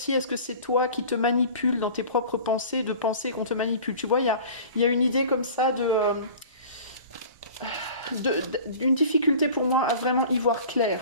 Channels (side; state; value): both; inverted; correlation -0.42